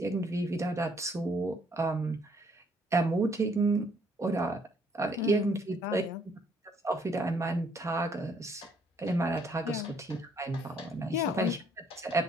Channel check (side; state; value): both; normal; correlation 0.66